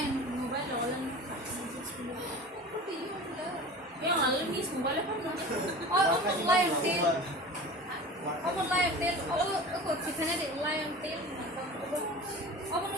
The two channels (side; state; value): both; normal; correlation 0.36